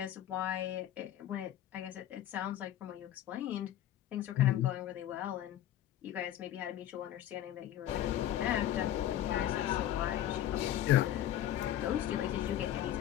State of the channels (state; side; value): quieter; right; 12.1 dB